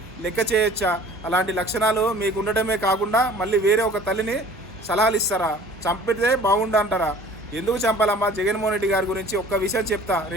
లెక్క చేయొచ్చా? అలాంటి లక్షణాలు మీకు ఉండటమే కాకుండా మళ్ళీ వేరే ఒక తల్లిని సలహాలు ఇస్తారా? చంపితే బాగుండు అంటారా? ఎందుకు చంపాలమ్మా? జగన్మోహన్ రెడ్డి గారి గురించి ఒక్క విషయం చెప్తా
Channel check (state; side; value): normal; both; correlation 0.48